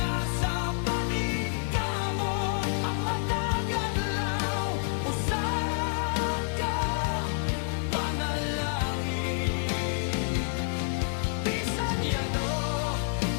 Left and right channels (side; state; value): right; silent; digital silence